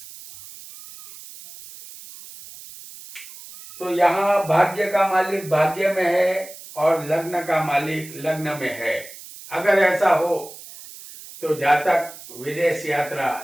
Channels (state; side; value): noise; right; hiss, 16 dB below the sound